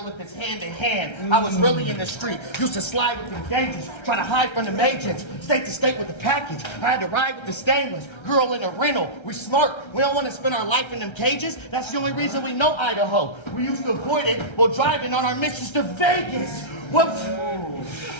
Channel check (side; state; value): right; late; 1.3 ms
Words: if it's hand to hand. I was really in the street. Used to slide with the gauges, try to hide from the agents. State to state with the package. I had to ride with the stainless. Girl in a rental. We smart. We don't want to spend our life in them cages. That's the only reason we know Idaho. We used to avoid it while driving on our missions to Vegas. Whoops.